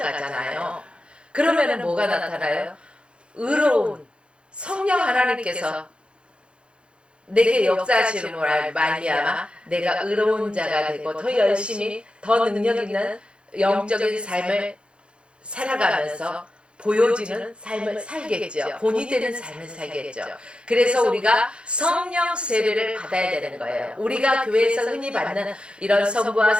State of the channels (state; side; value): late; left; 0.056 ms